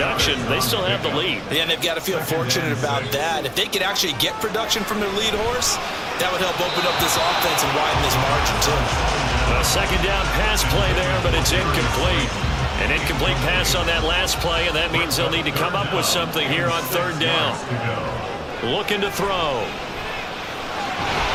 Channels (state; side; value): identical; both; correlation 1.00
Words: they still have the lead. Yeah, and they've got to feel fortunate about that. If they could actually get production from their lead horse, that would help open up this offense and widen this margin, too. A second down pass play there, but it's incomplete. An incomplete pass on that last play, and that means they'll need to come up with something here on third down. Looking to throw.